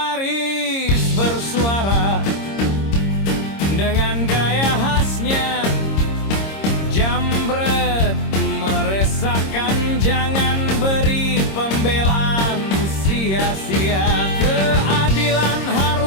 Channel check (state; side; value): late; right; 26 ms